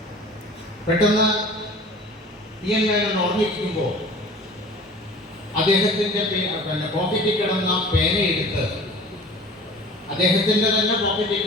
പെട്ടെന്ന് പി.എൻ. മേനോൻ ഓർമ്മിക്കുമ്പോൾ അദ്ദേഹത്തിൻ്റെ പോക്കറ്റിൽ കിടന്ന പേനയെടുത്ത് അദ്ദേഹത്തിൻ്റെ തന്നെ പോക്കറ്റിൽ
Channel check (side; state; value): both; normal; correlation 0.43